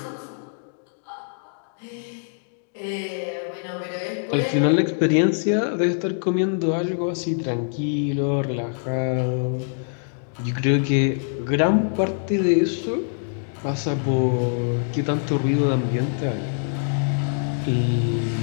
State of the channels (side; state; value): right; silent; digital silence